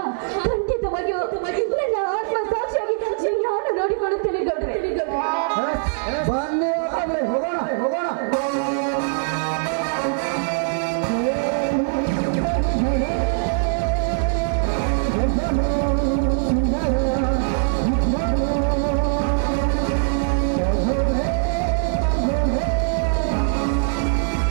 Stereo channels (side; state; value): left; silent; digital silence